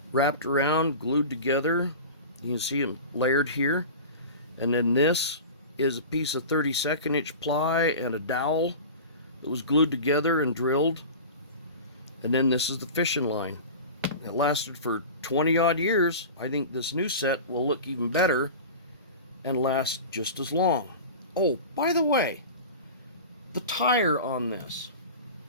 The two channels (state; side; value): inverted; both; correlation -0.33